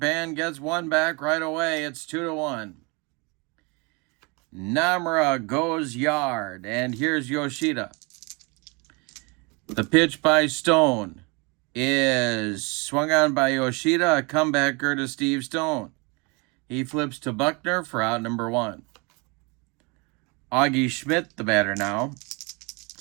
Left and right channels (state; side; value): quieter; left; 29.6 dB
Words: gets one back right away. It's 2-1. Namura goes yard. And here's Yoshida. The pitch by Stone is swung on by Yoshida. A comebacker to Steve Stone. He flips to Buckner for out number 1. Augie Schmidt, the batter now.